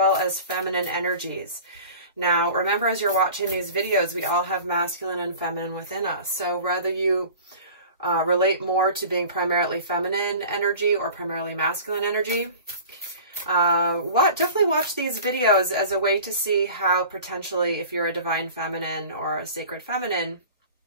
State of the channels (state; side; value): inverted; both; correlation -0.41